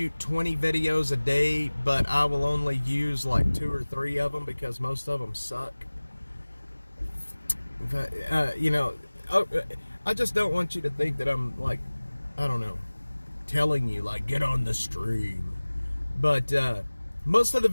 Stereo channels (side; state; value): both; inverted; correlation -1.00